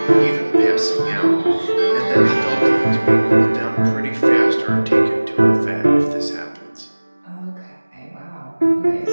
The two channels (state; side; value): inverted; both; correlation -1.00